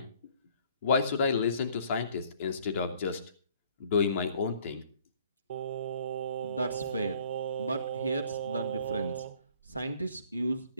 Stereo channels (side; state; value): both; inverted; correlation -0.58